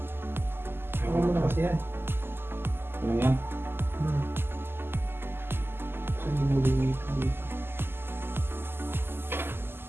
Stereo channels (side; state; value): left; late; 0.11 ms